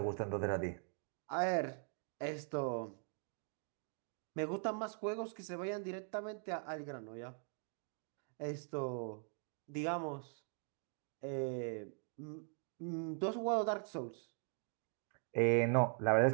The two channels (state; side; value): silent; left; 50 dB below the other